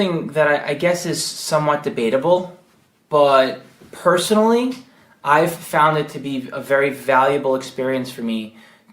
that I guess is somewhat debatable, but personally, I've found it to be a very valuable experience for me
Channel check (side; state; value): both; identical; correlation 1.00